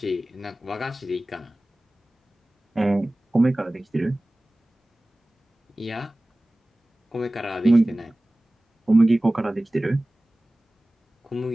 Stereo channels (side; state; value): both; normal; correlation 0.98